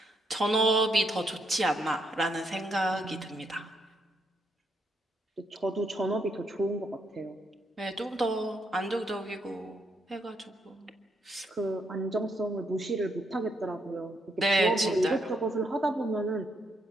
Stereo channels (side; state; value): both; normal; correlation 0.76